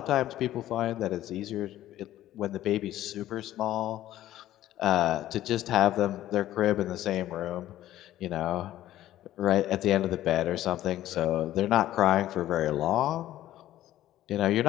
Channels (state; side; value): quieter; right; 13.6 dB